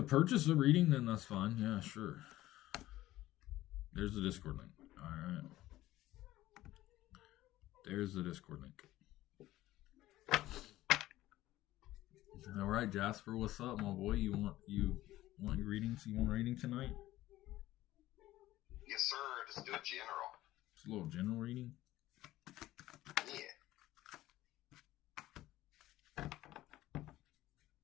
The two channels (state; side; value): quieter; right; 15.7 dB